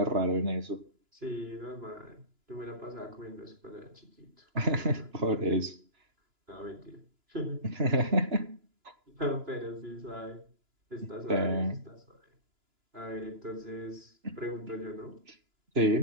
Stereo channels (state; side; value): late; left; 2.9 ms